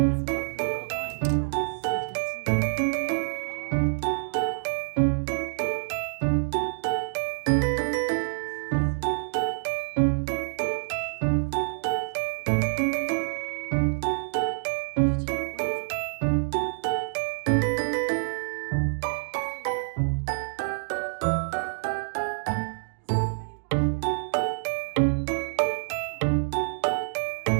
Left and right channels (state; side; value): silent; left; digital silence